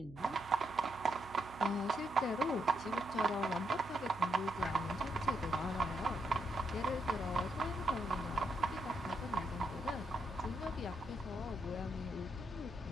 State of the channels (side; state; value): right; noise; hum, 18 dB below the sound